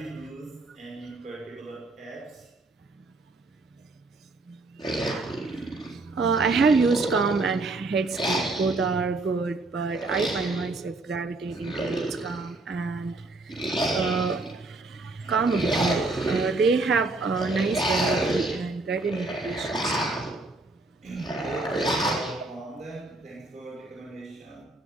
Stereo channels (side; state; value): left; quieter; 3.2 dB